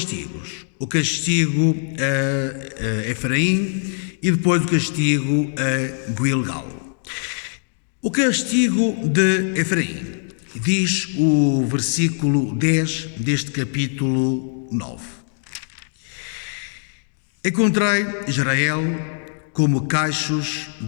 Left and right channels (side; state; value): right; silent; digital silence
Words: O castigo a Efraim e depois o castigo a Gilgal. O castigo de Efraim, diz o versículo 10 deste capítulo 9. Encontrei Israel como cachos